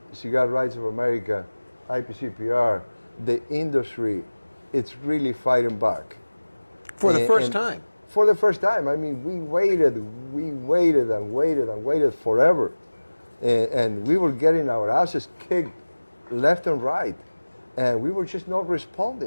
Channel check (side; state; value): both; inverted; correlation -1.00